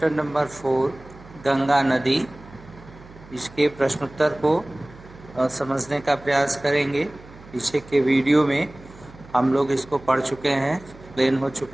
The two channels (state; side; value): noise; right; hum, 20 dB below the sound